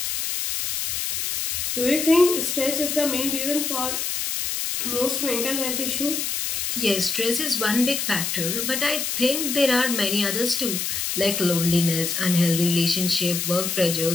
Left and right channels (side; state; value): left; noise; hiss, 1 dB below the sound